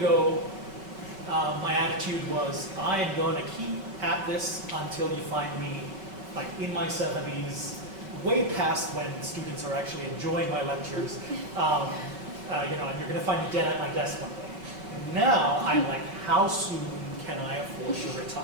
my attitude was, I am going to keep at this until you find me like in my 70s, way past when students are actually enjoying my lectures, and you're going to find me dead at my desk one day. And now I'm like, how soon can I afford to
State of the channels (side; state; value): left; late; 5.1 ms